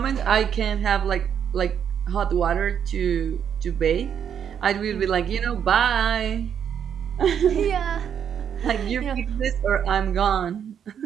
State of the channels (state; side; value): quieter; left; 8.4 dB